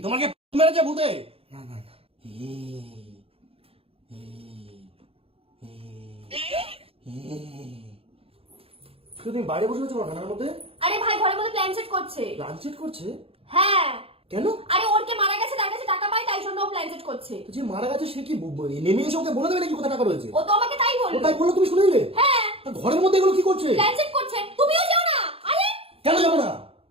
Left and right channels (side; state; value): left; late; 0.28 ms